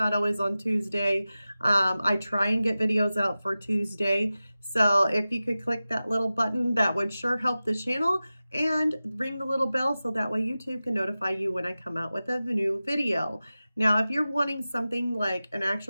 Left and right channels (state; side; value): inverted; both; correlation -0.95